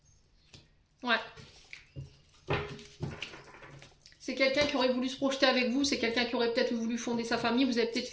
Ouais. C'est quelqu'un qui aurait voulu se projeter avec vous. C'est quelqu'un qui aurait peut-être voulu fonder sa famille. Vous avez peut-être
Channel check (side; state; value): both; identical; correlation 1.00